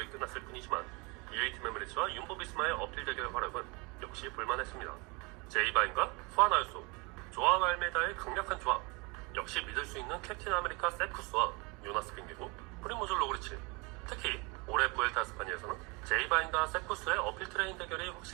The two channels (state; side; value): quieter; left; 28.2 dB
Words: 끝났을 뿐이지만 UAE 팀 에미리츠와 윤보비스마의 어필 대결 활약은 역시 볼만했습니다. 제이바인과 후안 아유소, 조아 알메다의 강력한 조합, 역시 믿을 수 있는 캡틴 아메리카 세쿠스와 요나스 빙기고 프리모즈 로그리치. 특히 올해 부엘타 스파니아에서는 제이바인과 세쿠스의 어필 트레인 대결이